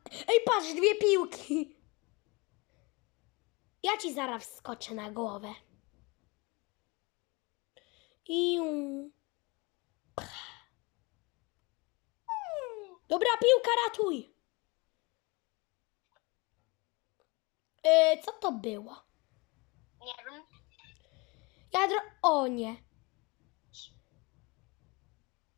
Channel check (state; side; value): quieter; right; 26.8 dB